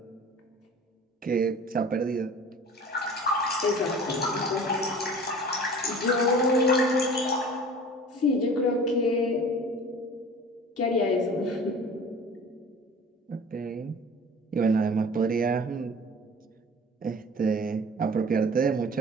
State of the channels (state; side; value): normal; both; correlation 0.42